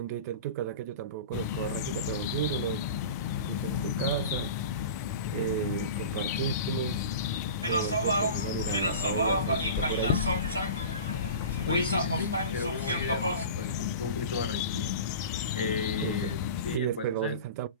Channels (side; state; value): both; inverted; correlation -0.35